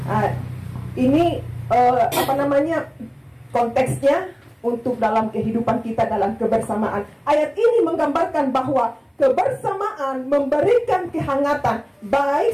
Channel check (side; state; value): both; identical; correlation 1.00